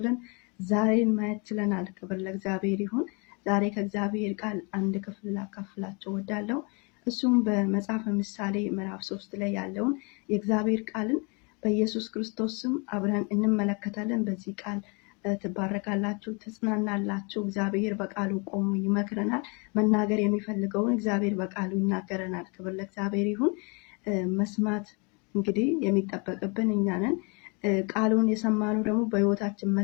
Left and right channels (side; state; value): right; quieter; 32.2 dB